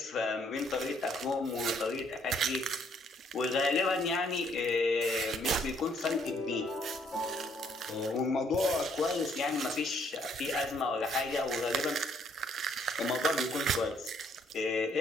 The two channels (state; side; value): normal; both; correlation 0.67